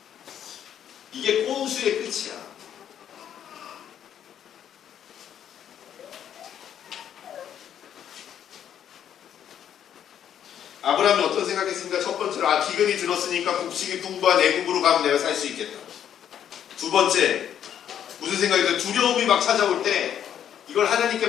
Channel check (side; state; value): right; quieter; 9.6 dB